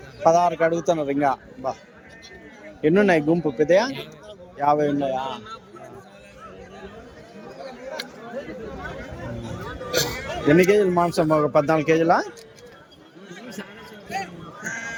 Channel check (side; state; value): both; identical; correlation 1.00